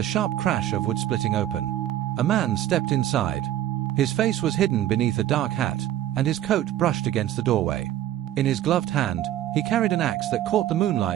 sharp crash of wood splitting open. A man stepped inside. His face was hidden beneath a dark hat, and his coat brushed against the doorway. In his gloved hand, he carried an axe that caught the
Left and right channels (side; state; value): left; quieter; 12.6 dB